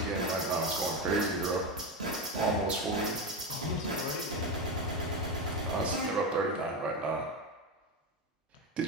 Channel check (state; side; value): normal; both; correlation 0.16